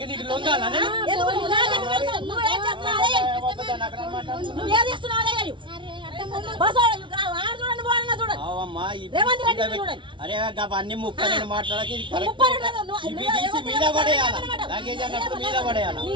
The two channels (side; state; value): left; late; 0.24 ms